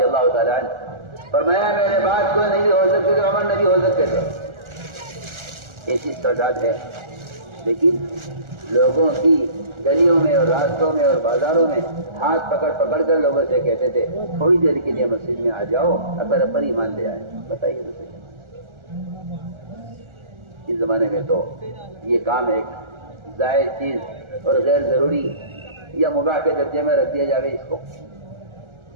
اللہ تعالیٰ عنہ فرمایا میرے بعد کوئی نہیں ہو سکتے تو عمر نبی ہو سکتے تھے۔ ایسی تعداد ہے، لیکن لوگوں کی گلیوں میں اور راستوں میں اور بازاروں میں ہاتھ پکڑ پکڑ کر لوگوں سے کہتے تھے تھوڑی دیر کے لیے مسجد میں آ جاؤ، اپر ایمان لے آئے۔ بتائیے تو صحیح، اس زمانے میں تو یہ کام ایک زائد چیز اور غیر ضروری یا مباح کے درجے میں رکھ دیا جائے اس کو،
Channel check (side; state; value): left; late; 1.4 ms